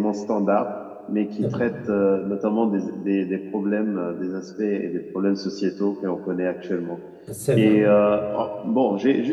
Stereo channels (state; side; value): identical; both; correlation 1.00